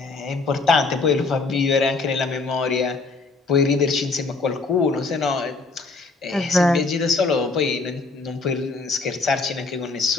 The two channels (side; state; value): right; quieter; 3.9 dB